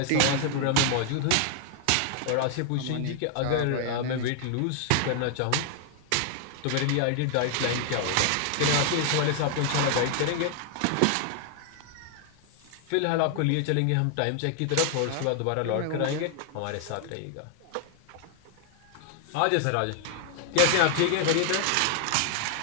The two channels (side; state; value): both; different; correlation 0.00